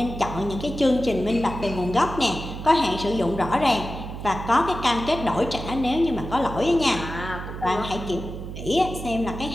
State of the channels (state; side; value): noise; right; hum, 9 dB below the sound